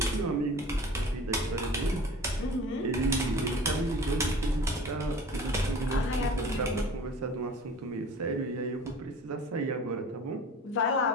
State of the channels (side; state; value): both; normal; correlation 0.42